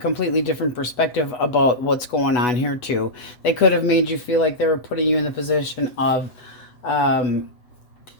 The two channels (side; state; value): right; late; 8.1 ms